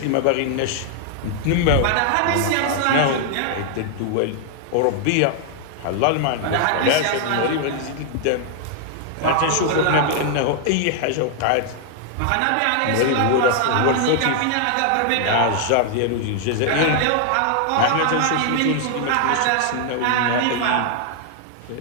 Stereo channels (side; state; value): both; different; correlation 0.00